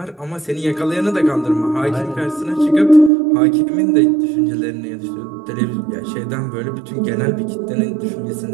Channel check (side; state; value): left; drops out; at 3.1 s